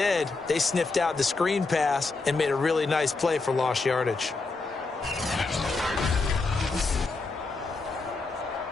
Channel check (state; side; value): quieter; right; 3.7 dB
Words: they sniffed out the screen pass and made a really nice play for lost yardage.